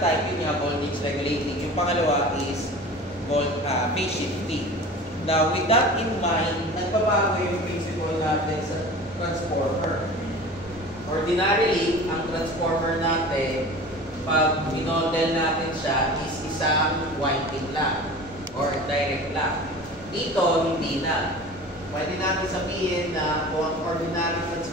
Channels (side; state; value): both; normal; correlation 0.38